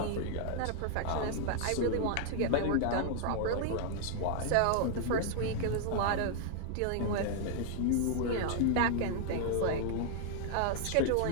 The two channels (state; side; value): different; both; correlation -0.01